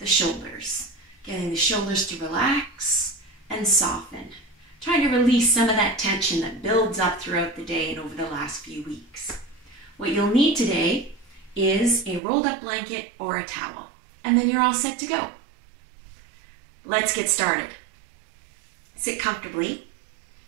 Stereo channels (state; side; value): drops out; left; at 12.2 s